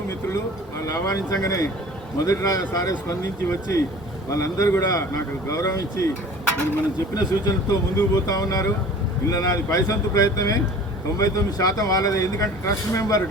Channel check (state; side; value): normal; both; correlation 0.44